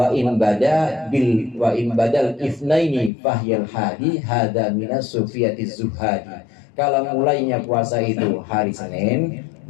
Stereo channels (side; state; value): right; drops out; at 3.1 s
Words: in badal ifnaini fahyal hadi hada minas sufiyatiz zuhadi. Kalau mulainya puasa itu hari Senin,